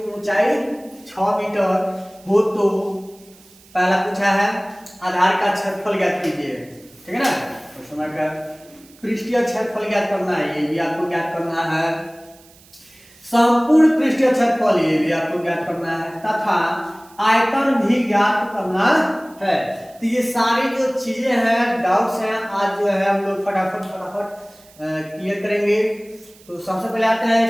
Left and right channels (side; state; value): right; noise; hiss, 26 dB below the sound